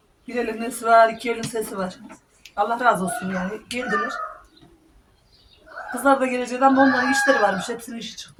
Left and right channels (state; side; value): identical; both; correlation 1.00